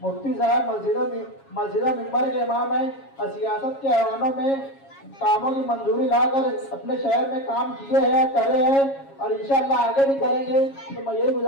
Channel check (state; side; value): late; right; 7.3 ms